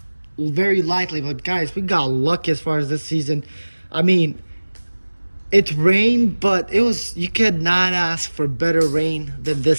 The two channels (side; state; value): both; inverted; correlation -1.00